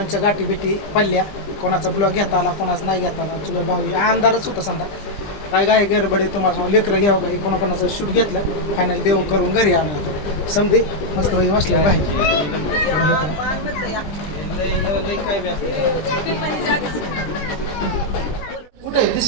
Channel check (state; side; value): late; right; 20 ms